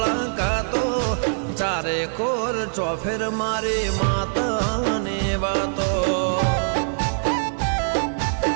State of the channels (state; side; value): silent; left; 63 dB below the other